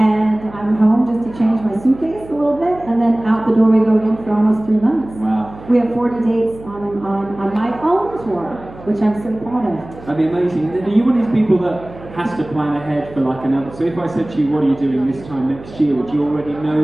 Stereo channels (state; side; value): noise; right; hum, 18 dB below the sound